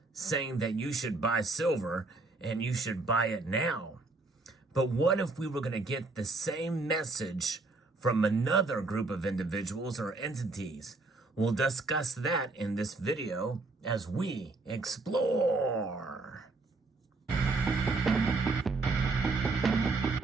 saying that you should buy silver and you should buy it now. But what if we were going to get the same message from another group of individuals or entities? We'll discuss that in this video as we explore.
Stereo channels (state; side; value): quieter; left; 3.4 dB